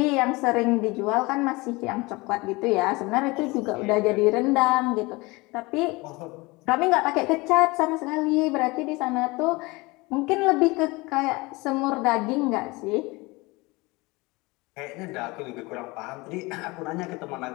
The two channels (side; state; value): right; quieter; 23.8 dB